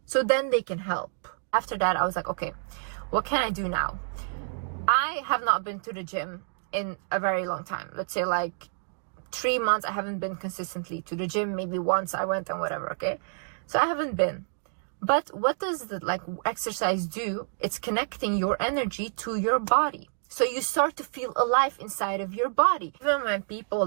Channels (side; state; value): left; silent; digital silence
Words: So then they can help. After that, I was like, okay, what can I do now? I have not been to the gym in a very long time. Let's say like 3 months, I haven't been consistently to the gym. Maybe once I went and whatever, okay? So I haven't been. But what does the exercise do? It's connecting your energy to your body. So you start to feel alive inside of your body. Even when people,